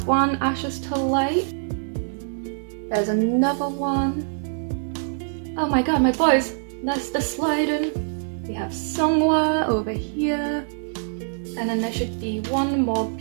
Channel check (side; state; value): left; silent; digital silence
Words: one Ashes to Light. There's another one. Oh my god, my boys, that's the sliding. We have Songhwa over here. And then there should be one more